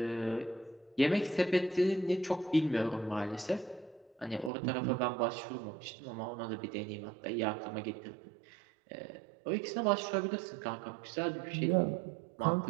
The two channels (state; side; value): drops out; left; at 4.5 s